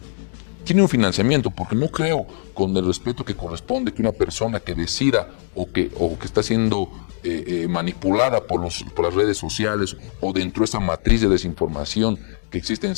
Tiene un financiamiento, porque no creo, con el respeto que corresponde, que una persona que decida o que está siendo manipulada por las redes sociales o dentro de esa matriz de desinformación que existe en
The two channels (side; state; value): right; silent; digital silence